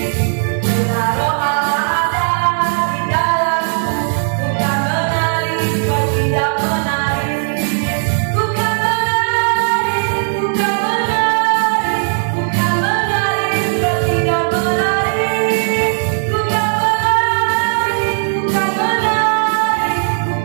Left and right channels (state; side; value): silent; left; digital silence